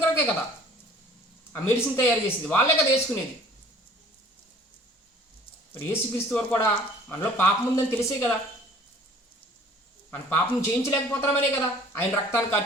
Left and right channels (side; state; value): both; normal; correlation 0.51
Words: కొరకే కదా ఆ మెడిసిన్ తయారు చేసేది, వాళ్ళే కదా వేసుకునేది. మరి యేసుక్రీస్తు వారు కూడా మనలో పాపం ఉందని తెలిసే కదా, మన పాపం జయించలేకపోతున్నామనే కదా ఆయన రక్తాన్ని